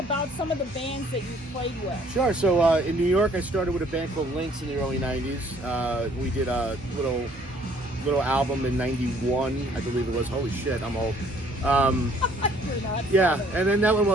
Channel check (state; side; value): normal; both; correlation 0.60